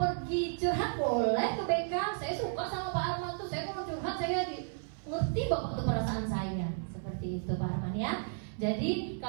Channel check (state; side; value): silent; left; 56 dB below the other